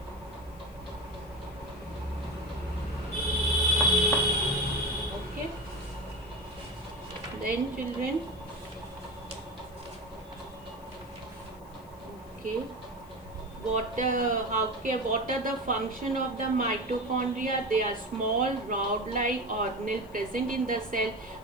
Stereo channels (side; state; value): left; noise; hiss, 27 dB below the sound